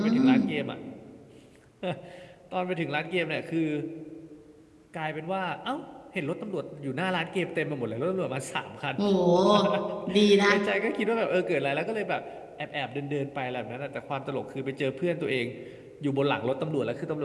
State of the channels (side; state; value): both; identical; correlation 1.00